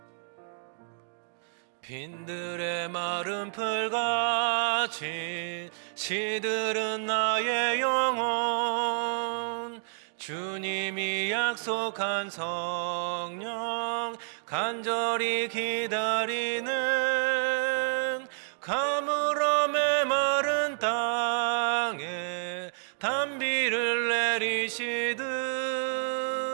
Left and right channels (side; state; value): left; silent; digital silence